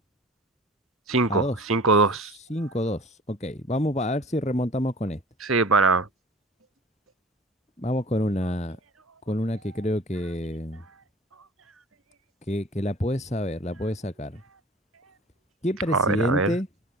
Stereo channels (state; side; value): normal; both; correlation 0.44